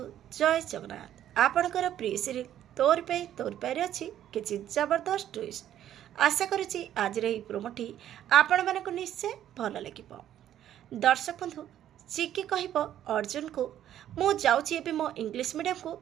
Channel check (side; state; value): left; quieter; 11.3 dB